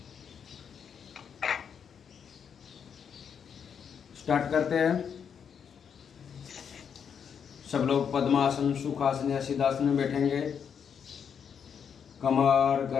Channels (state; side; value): quieter; right; 7.3 dB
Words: Start करते हैं। सब लोग पद्मासन, सुखासन या सिद्धासन में बैठेंगे। कमर